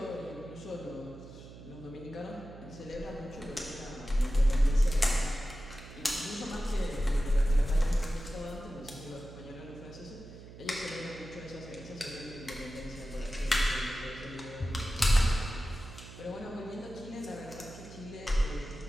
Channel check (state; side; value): noise; right; hum, 15 dB below the sound